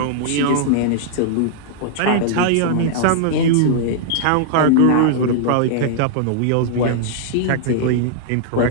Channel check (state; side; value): different; both; correlation -0.01